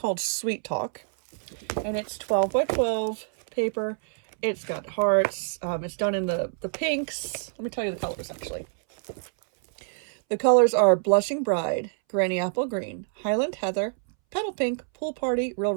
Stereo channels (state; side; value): silent; left; 61 dB below the other